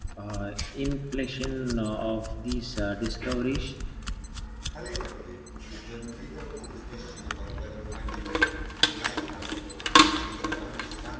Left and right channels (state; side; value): identical; both; correlation 1.00